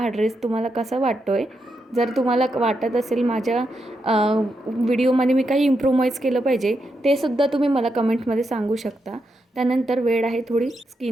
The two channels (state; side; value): normal; both; correlation 0.84